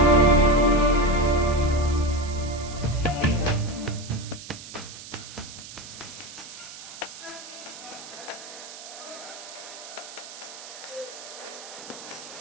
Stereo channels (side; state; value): right; noise; hiss, 14 dB below the sound